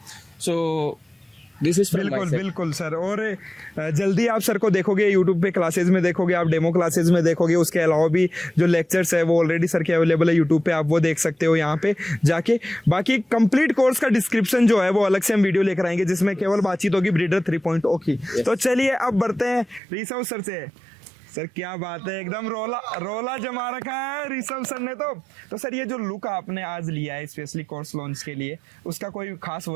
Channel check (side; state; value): left; drops out; at 19.8 s